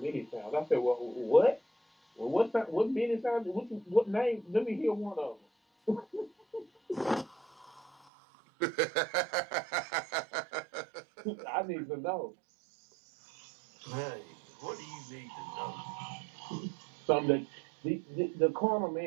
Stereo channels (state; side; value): drops out; left; at 7.9 s